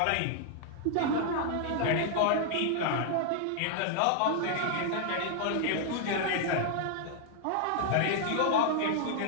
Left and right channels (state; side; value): different; both; correlation 0.00